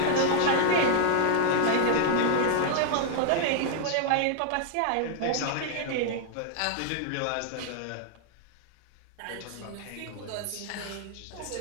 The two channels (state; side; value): different; both; correlation 0.00